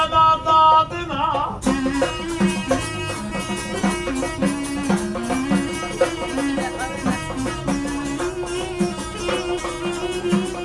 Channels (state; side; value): identical; both; correlation 1.00